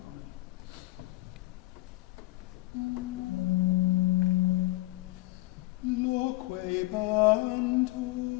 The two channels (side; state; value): right; quieter; 20.4 dB